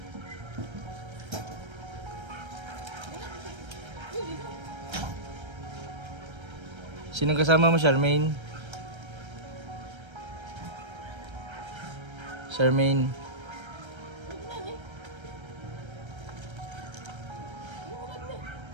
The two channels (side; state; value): left; late; 1.3 ms